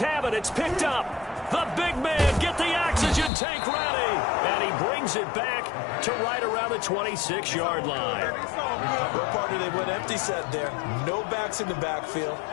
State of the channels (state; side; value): drops out; right; at 3.3 s